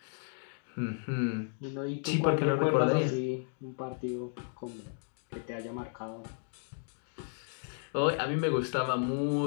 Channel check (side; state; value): right; silent; 55 dB below the other